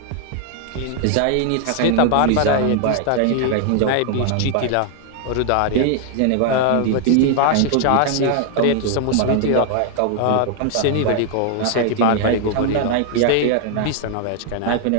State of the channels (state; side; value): different; both; correlation 0.00